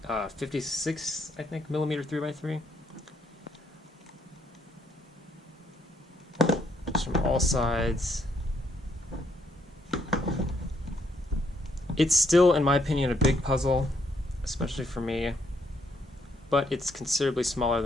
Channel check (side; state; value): both; normal; correlation 0.73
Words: I think, millimeter 3x3. From all sides. It's still, in my opinion, a big puzzle, especially for me, but it's considerably smaller